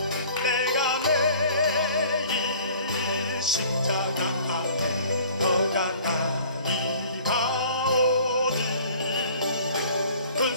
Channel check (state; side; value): inverted; both; correlation -0.50